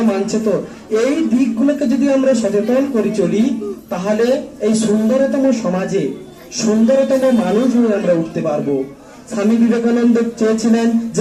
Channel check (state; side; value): identical; both; correlation 1.00